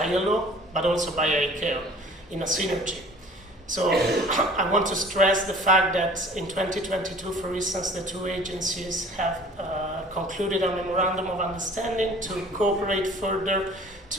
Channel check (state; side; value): normal; both; correlation 0.49